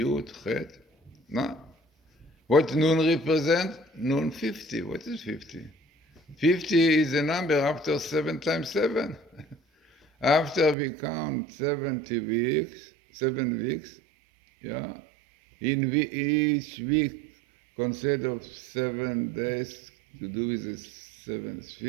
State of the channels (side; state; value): left; drops out; at 10.8 s